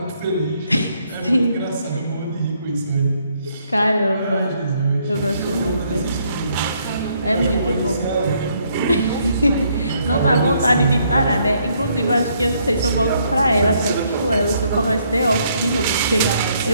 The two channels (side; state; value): both; inverted; correlation -0.71